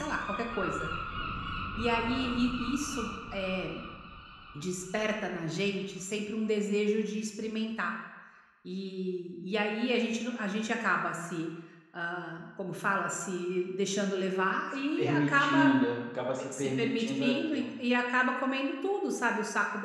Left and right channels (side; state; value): both; identical; correlation 1.00